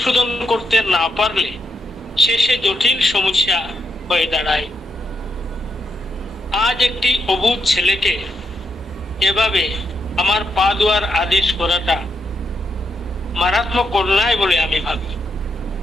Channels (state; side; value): normal; both; correlation 0.80